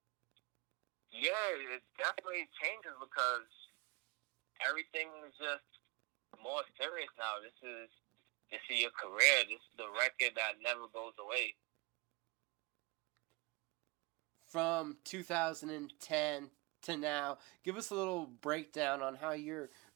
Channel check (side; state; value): left; quieter; 26.3 dB